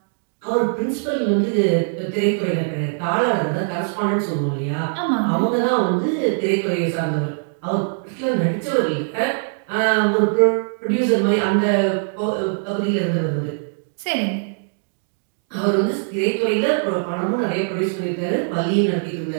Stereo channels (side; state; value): left; silent; digital silence